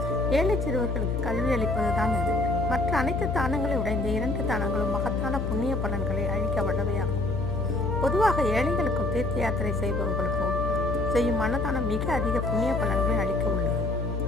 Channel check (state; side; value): noise; left; hum, 2 dB below the sound